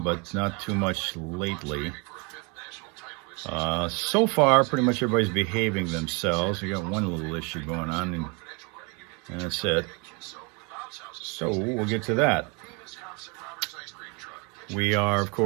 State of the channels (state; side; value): quieter; left; 31.4 dB